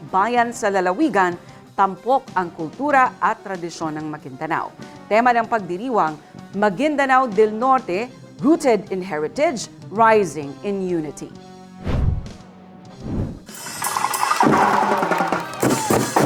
bayan sa lalawigan, tampok ang kultura at tradisyon ng Maguindanao. Tema ng pagdiriwang, Maguindanao del Norte, Rooted in Heritage, Rising in Unity.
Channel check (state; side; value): identical; both; correlation 1.00